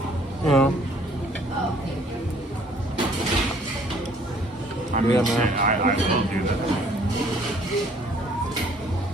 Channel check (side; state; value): both; normal; correlation 0.59